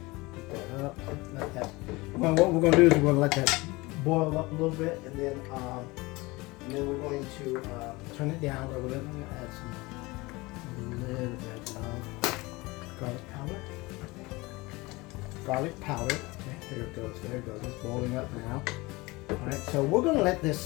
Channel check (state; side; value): quieter; right; 22.9 dB